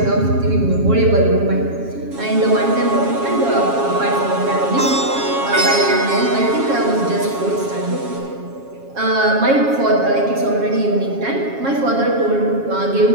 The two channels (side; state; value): left; late; 7.3 ms